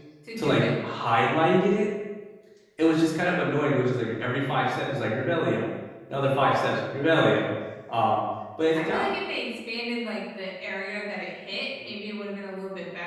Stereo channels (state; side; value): identical; both; correlation 1.00